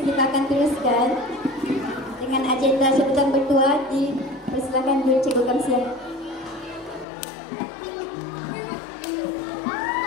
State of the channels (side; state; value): right; drops out; at 7.1 s